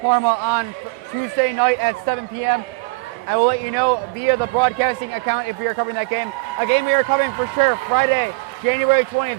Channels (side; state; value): left; quieter; 28.3 dB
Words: Parma on Tuesday night at 7 p.m. I will let you know via the broadcasting account if we are covering that game. A game we are covering for sure, Friday, January